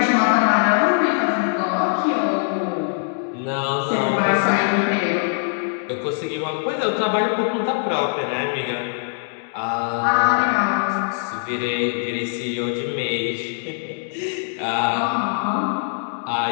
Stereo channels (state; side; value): silent; right; 64 dB below the other